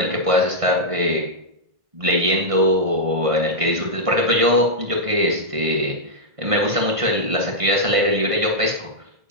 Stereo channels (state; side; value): late; left; 1.5 ms